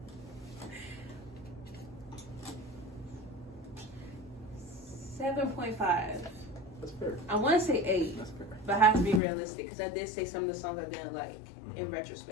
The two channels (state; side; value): drops out; right; at 9.2 s